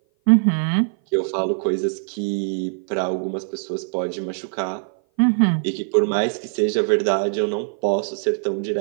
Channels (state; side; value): silent; left; 57 dB below the other